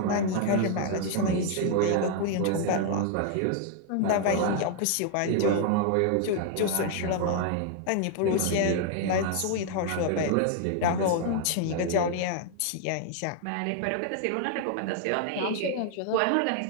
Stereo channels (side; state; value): both; different; correlation 0.00